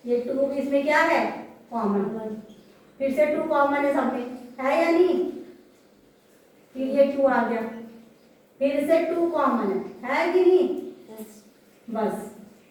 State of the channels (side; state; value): both; identical; correlation 1.00